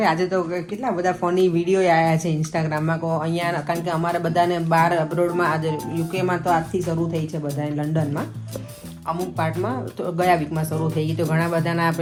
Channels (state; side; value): identical; both; correlation 1.00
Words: આજે તો કેટલા બધા ફની વિડીયો આવ્યા છે ઇન્સ્ટાગ્રામમાં. કહો અહીંયા, કારણ કે અમારે બધાને બહાર અબ્રોડમાં, આજે યુકેમાં તો આજથી શરૂ થઈ છે બધાને, લંડનમાં અમુક પાર્ટમાં તો ગયા વીકમાં શરૂ થઈ ગઈ. તો ઘણા બધાના